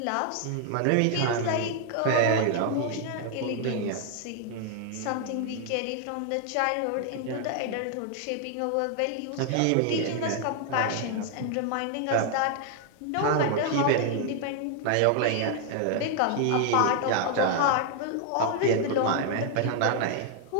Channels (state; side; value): different; both; correlation 0.00